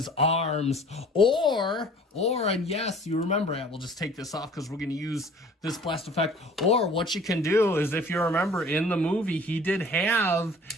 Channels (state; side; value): normal; both; correlation 0.49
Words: arms. And yes, you remember it. We'll just take this off because we're going to use this blast effect. Or what you can do is, if you remember in the movie, he did have